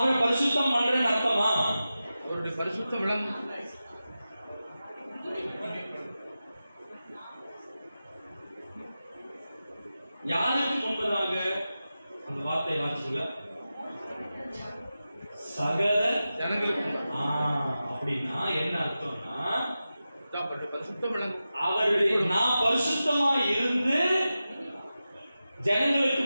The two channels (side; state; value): both; inverted; correlation -0.93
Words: பரிசுத்தம் பண்றேன்னு அர்த்தமா? அவருடைய பரிசுத்தம் விளங்கும். யாருக்கு முன்பதாக அந்த வார்த்தை வாசிச்சுல சகல ஜனங்களுக்கு. அப்படின்னா என்ன அர்த்தம்னா பரிசுத்தம் விளங்கும். அவருடைய நான் பரிசுத்தமா இருந்து ஜனங்களுக்கு